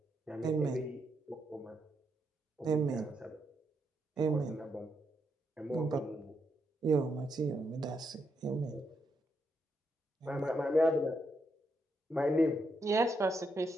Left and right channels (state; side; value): normal; both; correlation 0.80